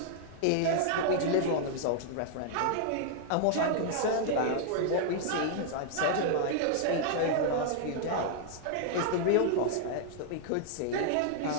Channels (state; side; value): different; both; correlation -0.01